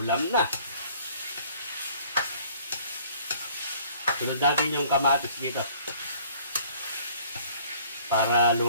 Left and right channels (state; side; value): inverted; both; correlation -0.56